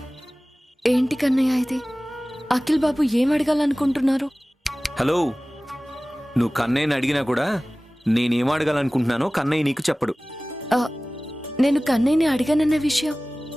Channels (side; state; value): both; normal; correlation 0.98